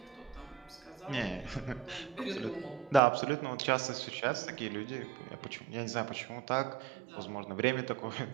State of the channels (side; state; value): left; drops out; at 3.0 s